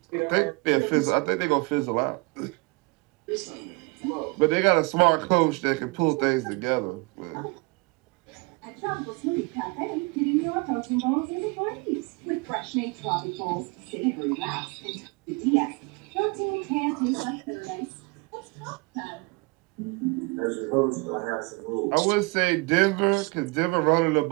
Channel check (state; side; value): quieter; left; 27.4 dB